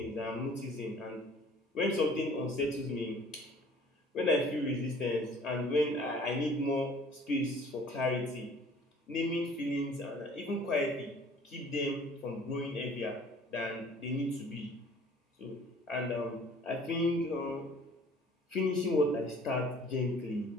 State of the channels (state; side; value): normal; both; correlation 0.52